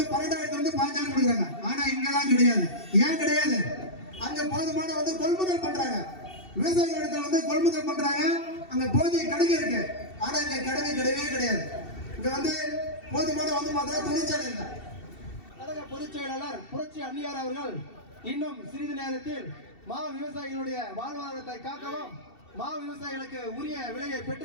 15,000 கொடுக்குறாங்க. ஆனா இங்கதான் கிடையாது. ஏன் கிடையாது? அங்க போதுமான கொள்முதல் பண்றாங்க. விவசாயிகள் இடத்துல கொள்முதல் பண்றாங்க. அங்க போதிய கிடங்கு இருக்கு. ஆனா இங்க கிடங்கு கிடையவே கிடையாது. இங்க போதுமான பார்த்தா தொழிற்சாலை இல்லை. கழக பொதுச் செயலாளர் புரட்சி அன்னியார் அவர்கள் இன்னும் சிறிது நேரத்தில் விவசாயிகளுடைய வாழ்வாதாரத்தை காக்கவும் விவசாயிகளுக்கு உரிய விலையை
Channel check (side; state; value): right; late; 2.7 ms